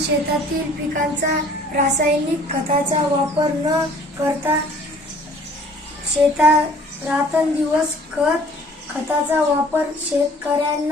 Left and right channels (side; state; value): both; normal; correlation 0.53